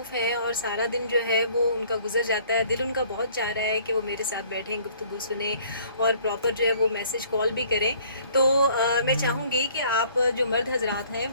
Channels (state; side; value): inverted; both; correlation -0.57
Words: ہیں اور سارا دن جو ہے وہ ان کا گزر جاتا ہے. دل ان کا بہت چاہ رہا ہے کہ وہ میرے ساتھ بیٹھیں، گفتگو سنیں اور پراپر جو ہے وہ میسج کال بھی کریں. تو میں چاہوں گی کہ آپ جو مرد حضرات ہیں